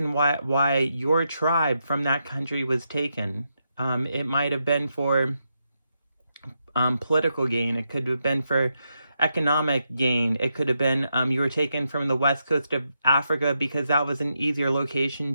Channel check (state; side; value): inverted; both; correlation -0.83